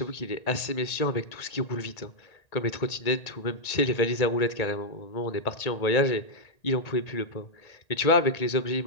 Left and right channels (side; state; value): right; late; 1.8 ms